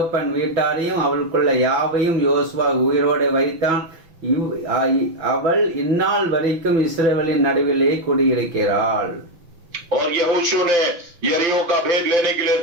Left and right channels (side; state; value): left; late; 5.8 ms